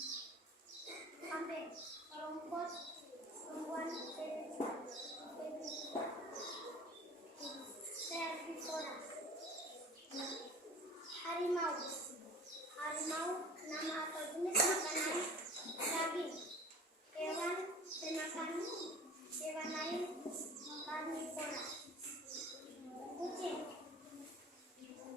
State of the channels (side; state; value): both; normal; correlation 0.43